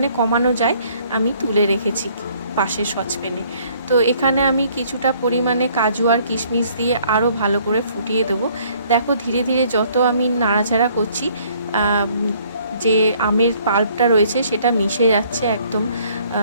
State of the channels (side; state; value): both; inverted; correlation -0.61